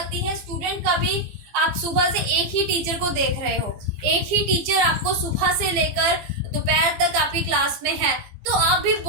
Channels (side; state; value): left; late; 15 ms